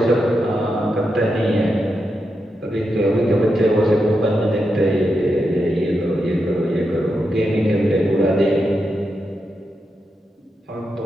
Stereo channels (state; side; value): normal; both; correlation 0.86